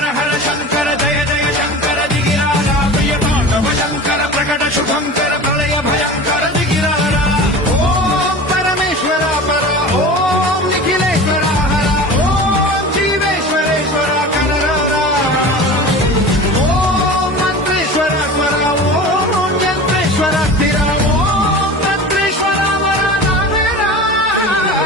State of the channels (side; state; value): both; normal; correlation 0.34